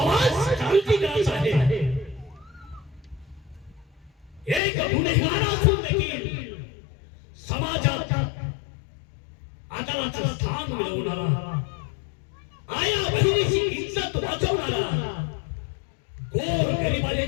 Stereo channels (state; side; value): drops out; right; at 4.6 s